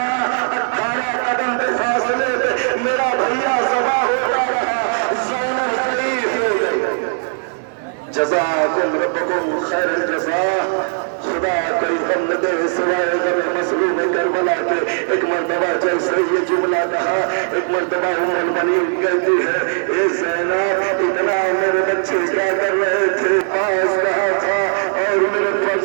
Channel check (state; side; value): silent; left; 60 dB below the other